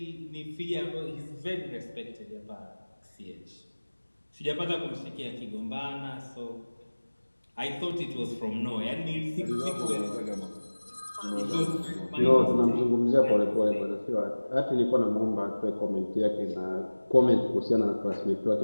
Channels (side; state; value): both; inverted; correlation -1.00